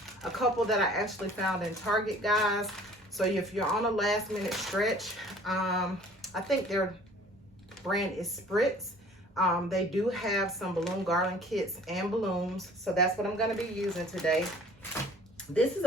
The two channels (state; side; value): normal; both; correlation 0.51